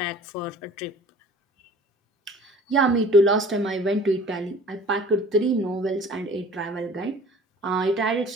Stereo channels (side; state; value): both; normal; correlation 0.47